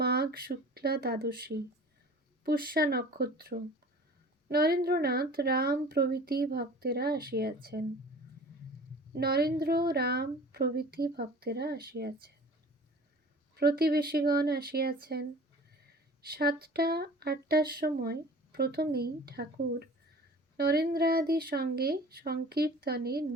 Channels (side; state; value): both; normal; correlation 0.43